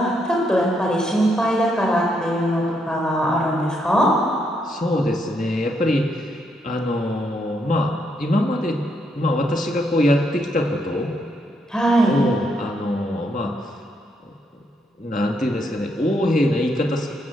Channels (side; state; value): both; normal; correlation 0.77